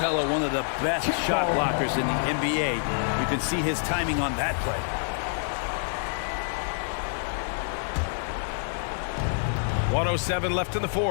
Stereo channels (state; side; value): silent; right; 60 dB below the other